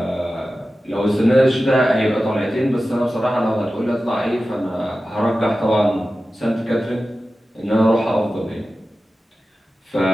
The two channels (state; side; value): normal; both; correlation 0.94